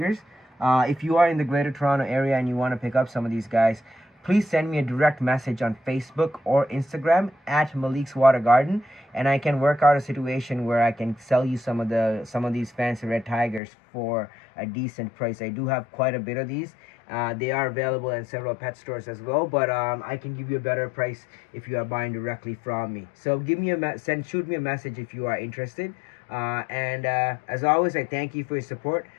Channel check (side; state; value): right; drops out; at 13.6 s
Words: If you are in the Greater Toronto area and you want to pick up some of these guys, please send me a direct message on Facebook or Instagram at Malik's Water Garden, and I can work out a situation where I can sell you some of these fancy red tigers for a decent price. I do have quite a bit of these. They are available in several pet stores as well, but I can give you a better price if you are buying directly from me. So shoot me a message if you are interested. And as always, I thank you for your support.